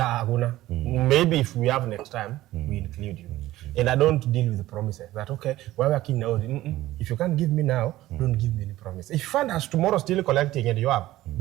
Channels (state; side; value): quieter; left; 15.9 dB